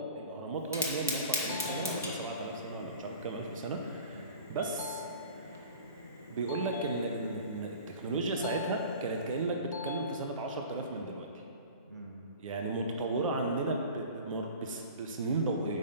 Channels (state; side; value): inverted; both; correlation -0.40